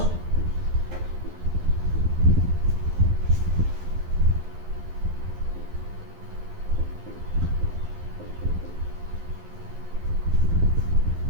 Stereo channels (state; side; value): late; left; 11 ms